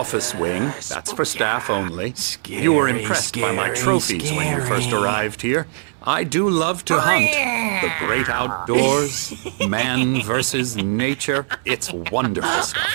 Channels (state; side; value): silent; left; 64 dB below the other